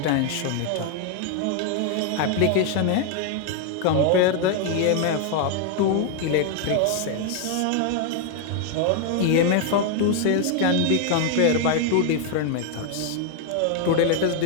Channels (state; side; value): different; both; correlation 0.00